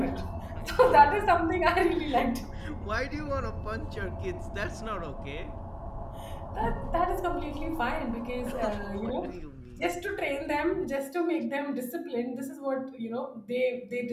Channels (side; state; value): both; identical; correlation 1.00